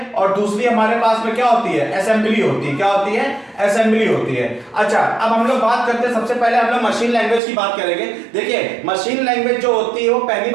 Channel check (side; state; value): left; drops out; at 7.4 s